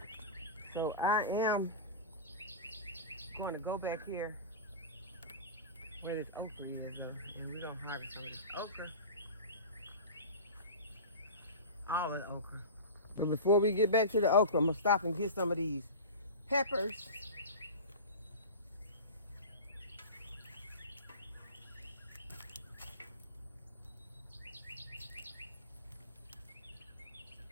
So I am going to go back here where this okra is, though, and we're going to harvest some of this okra. All of the okra. But before we get back to the okra, I'm going to stop and get some of these peppers.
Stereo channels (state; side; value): inverted; both; correlation -0.30